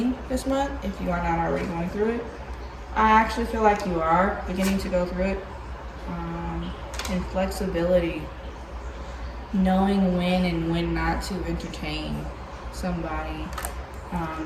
this month, if you are not already going through it. I actually feel like you are beginning to go through it. And flexibility, knowing when and when not to entertain somebody.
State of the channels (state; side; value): identical; both; correlation 1.00